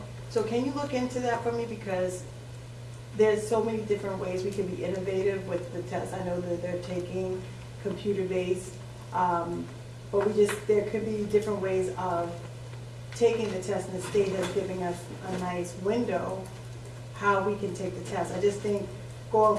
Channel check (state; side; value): identical; both; correlation 1.00